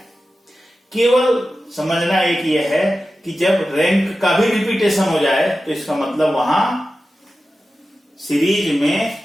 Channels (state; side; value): normal; both; correlation 0.93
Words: केवल समझना एक ये है कि जब रैंक का भी रिपीटेशन हो जाए तो इसका मतलब वहां सीरीज में